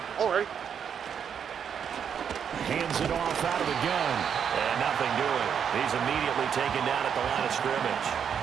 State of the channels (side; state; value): left; quieter; 7.7 dB